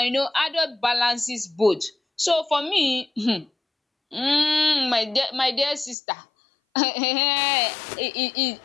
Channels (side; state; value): right; drops out; at 6.0 s